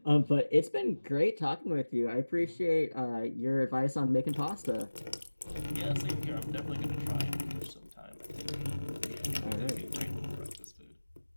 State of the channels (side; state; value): both; inverted; correlation -1.00